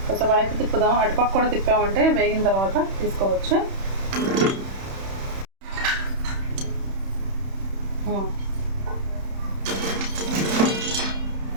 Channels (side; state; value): left; late; 31 ms